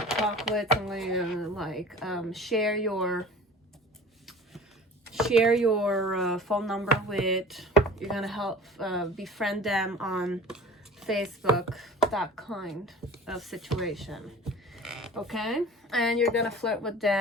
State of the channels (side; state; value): both; normal; correlation 0.41